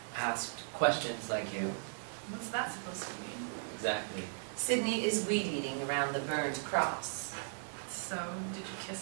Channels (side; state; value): left; silent; digital silence